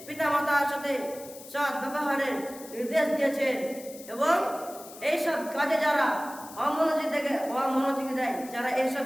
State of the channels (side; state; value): left; noise; hiss, 17 dB below the sound